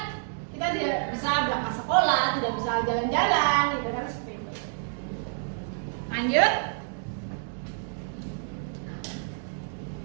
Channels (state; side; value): silent; left; digital silence